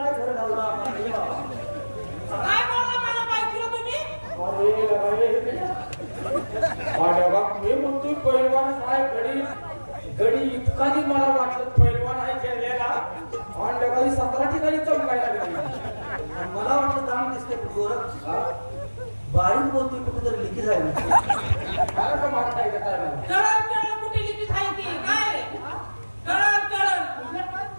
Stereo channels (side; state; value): both; inverted; correlation -1.00